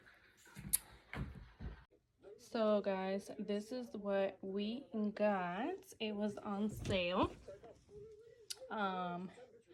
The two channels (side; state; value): both; identical; correlation 1.00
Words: So guys, this is what we got. It was on sale.